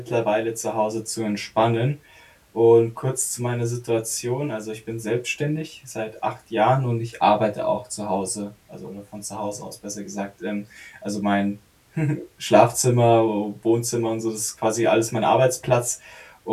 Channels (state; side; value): identical; both; correlation 1.00